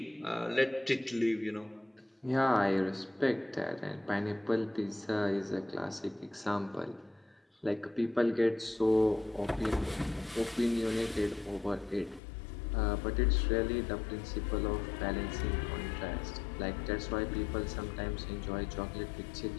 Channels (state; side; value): drops out; right; at 12.2 s